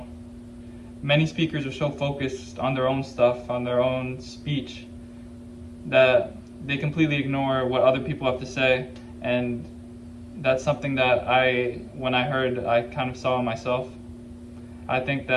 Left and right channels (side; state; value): both; identical; correlation 1.00